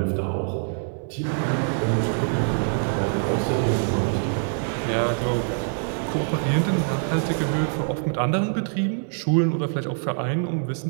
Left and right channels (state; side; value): silent; left; 59 dB below the other